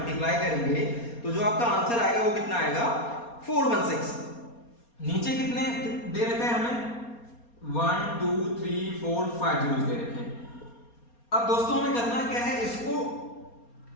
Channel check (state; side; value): late; right; 4.3 ms